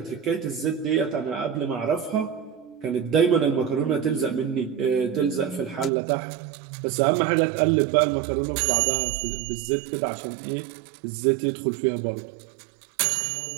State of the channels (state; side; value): drops out; left; at 5.9 s